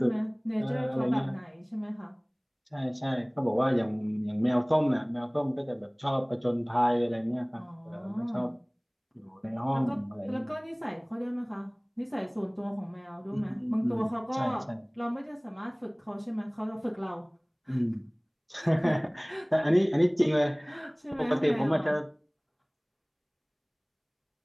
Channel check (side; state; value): both; identical; correlation 1.00